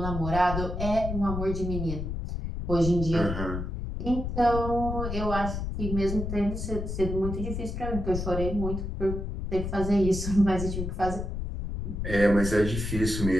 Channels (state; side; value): noise; left; rumble, 4 dB below the sound